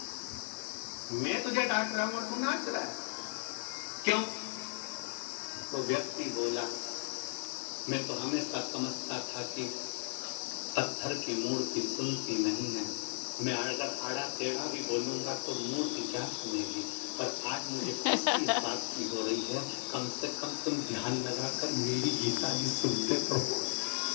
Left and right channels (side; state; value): right; silent; 54 dB below the other